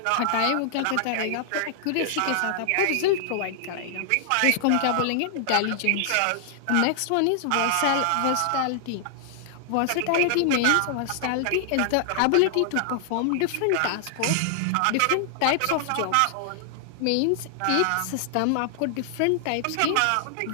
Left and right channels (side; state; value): both; different; correlation 0.00